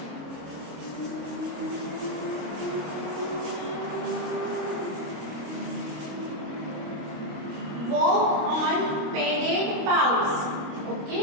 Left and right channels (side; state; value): left; late; 26 ms